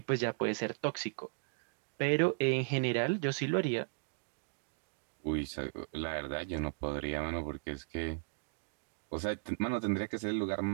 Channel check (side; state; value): left; silent; digital silence